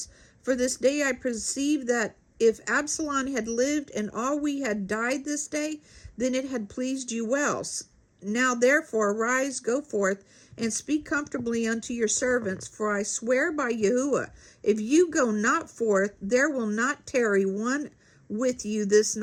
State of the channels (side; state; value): both; identical; correlation 1.00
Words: For this day I perceive that if Absalom had lived and all we had died this day, then it had pleased you well. Now therefore arise, go forth, and speak comfortably unto your servants. For I swear by Yahuwah, if you go not forth, there will not tarry one with you this